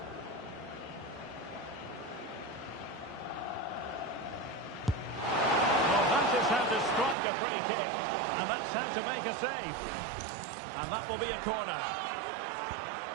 Strike a free kick, and that's how to make a save, and that will be a corner.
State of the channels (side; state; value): left; drops out; at 7.2 s